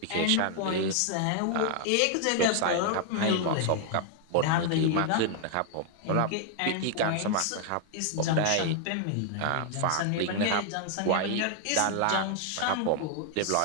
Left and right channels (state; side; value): different; both; correlation 0.00